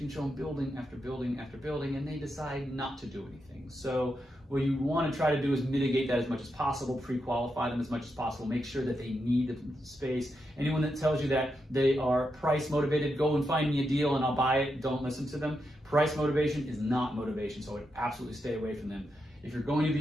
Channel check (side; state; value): both; normal; correlation 0.85